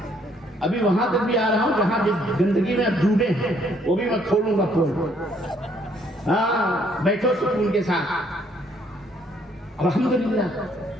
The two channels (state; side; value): normal; both; correlation 0.67